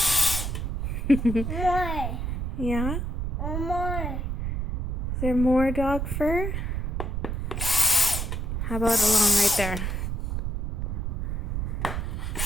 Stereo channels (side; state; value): right; noise; rumble, 1 dB below the sound